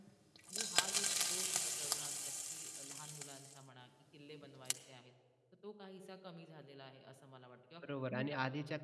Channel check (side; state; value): both; identical; correlation 1.00